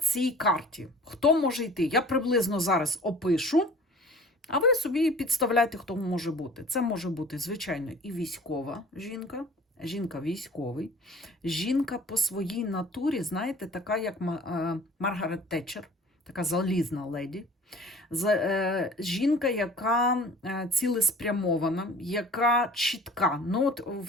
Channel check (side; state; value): both; normal; correlation 0.46